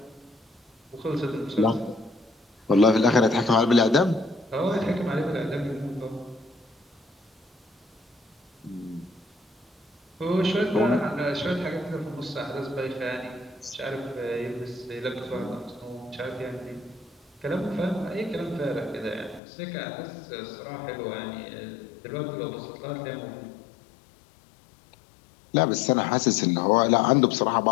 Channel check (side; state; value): right; drops out; at 19.4 s